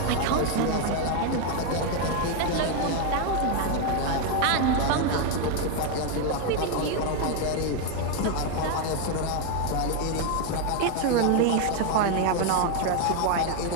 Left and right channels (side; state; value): both; different; correlation 0.01